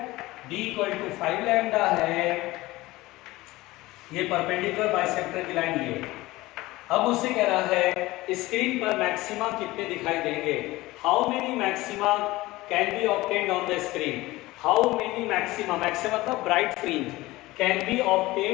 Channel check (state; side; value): quieter; right; 19.1 dB